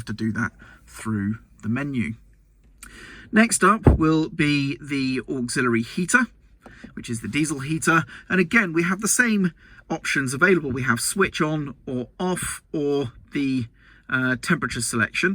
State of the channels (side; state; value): both; identical; correlation 1.00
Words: to do that through the menu. Next up will be the auxiliary heater, which is the diesel heater. And again, we have the same options available. We have switch on or off, or the temperature